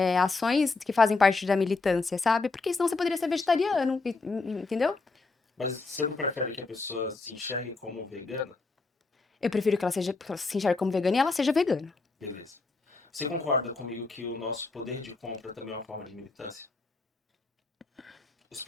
ações que fazem parte da militância, sabe? Porque senão você poderia ser vegetariano, entendeu? Mas você não prefere que a pessoa se enxergue como vegana? Eu prefiro que ela se enxergue como vegana e ela seja vegana. Beleza. Você concorda comigo que o nosso poder de compra também é uma forma de militância? Os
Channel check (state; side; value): quieter; right; 3.8 dB